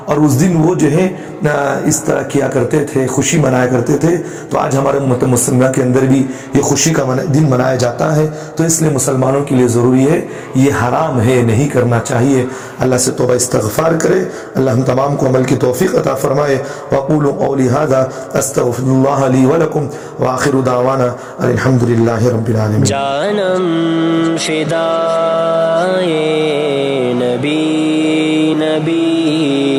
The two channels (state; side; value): identical; both; correlation 1.00